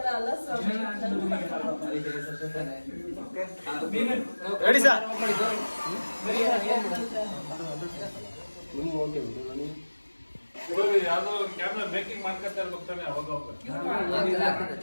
ಅಲ್ಲ ಸರ್. ರೆಡಿ ಸರ್ ಯಾವ್ದೋ ಕ್ಯಾಮ್ರಾ ಮೇಕಿಂಗ್ ಮಾಡ್ಕೊತಾ ಇರ್ಬೇಕಾನೆ ಅವಾಗ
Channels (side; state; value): both; inverted; correlation -1.00